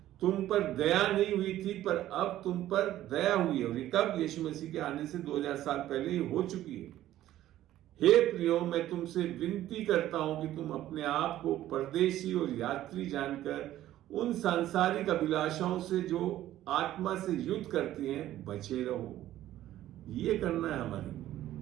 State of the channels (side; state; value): left; quieter; 13.5 dB